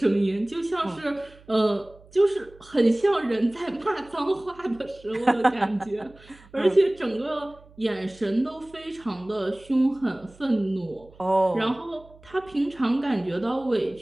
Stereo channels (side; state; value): right; noise; hum, 25 dB below the sound